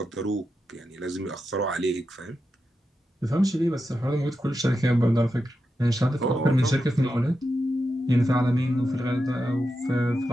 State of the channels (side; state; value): both; normal; correlation 0.88